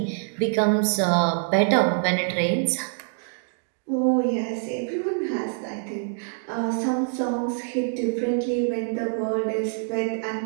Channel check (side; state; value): left; silent; 61 dB below the other